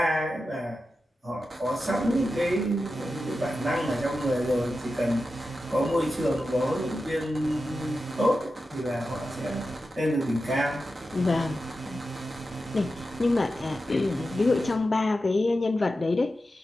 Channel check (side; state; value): both; normal; correlation 0.91